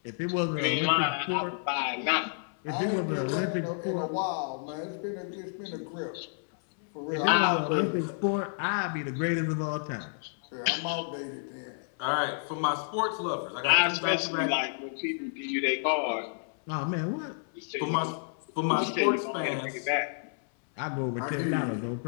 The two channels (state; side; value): silent; right; 58 dB below the other